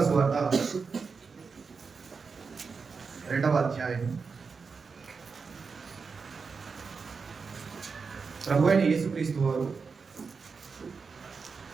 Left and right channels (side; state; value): left; quieter; 5.1 dB